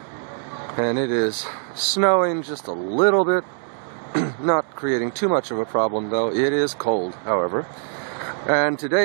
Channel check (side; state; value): left; silent; 60 dB below the other